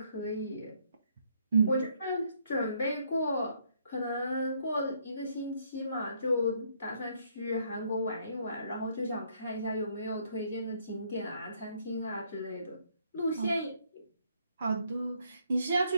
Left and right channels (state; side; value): inverted; both; correlation -0.68